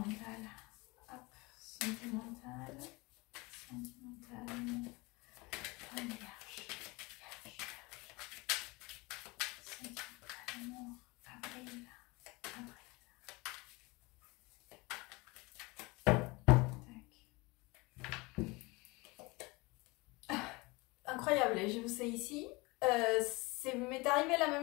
Hop, sentimental. Sentimental. Un vierge. Sentimental, amour. Avril. Incroyable, je vous sais ici. M'est arrivé la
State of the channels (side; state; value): right; quieter; 24.6 dB